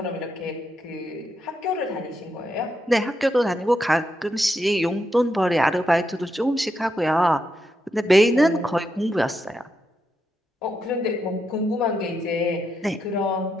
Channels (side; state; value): both; normal; correlation 0.82